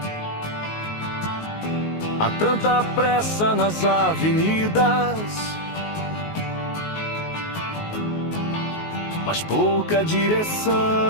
Há tanta pressa nas avenidas, mas pouca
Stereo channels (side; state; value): right; late; 19 ms